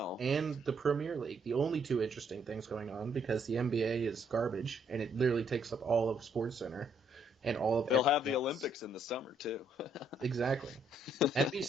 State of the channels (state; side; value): normal; both; correlation 0.70